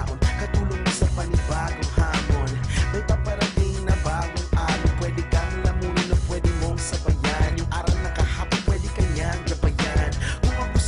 Katulong mo sa panibagong hamon. May paparating na bagong araw. Pwede kang lamunin o pwede mong sabayan. Yung araw na kahapon, pwede kanyang gabayan. Kung ako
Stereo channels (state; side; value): identical; both; correlation 1.00